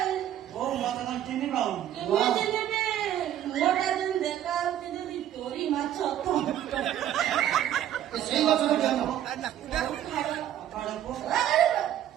ଓ ମତେ କଣ ଚିହ୍ନି ପାଉନି ମୋଟା ଯେମିତି ଦେଖା ହଉଛି ଯଦି ଚୋରି ମାଛ ସେଇ ଗଛର ଜନ୍ମ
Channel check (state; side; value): quieter; left; 11.3 dB